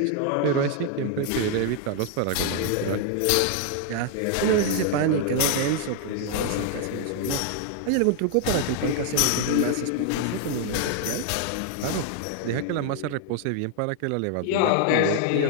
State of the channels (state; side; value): different; both; correlation 0.00